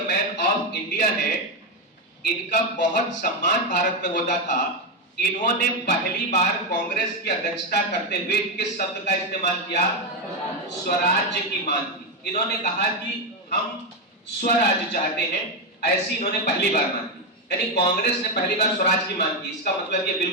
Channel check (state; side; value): normal; both; correlation 0.07